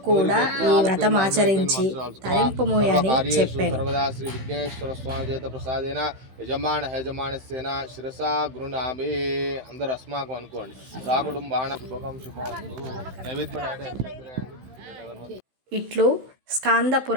కూడా ఈ వ్రతమాచరించి తరింపుము అని చెప్పాను. అందరు అస్మాకం అనుకోండి. సాకుటుంబాణ శుభకం శుభం. ఇట్లు స్కాంద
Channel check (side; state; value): left; late; 16 ms